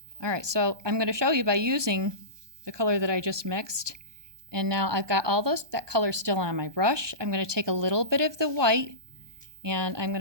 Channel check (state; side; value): late; left; 1.2 ms